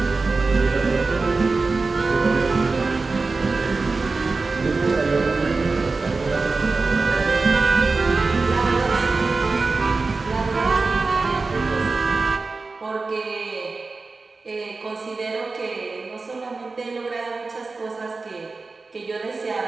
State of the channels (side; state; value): left; quieter; 3.9 dB